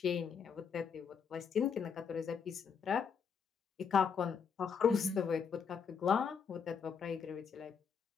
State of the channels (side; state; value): right; quieter; 6.6 dB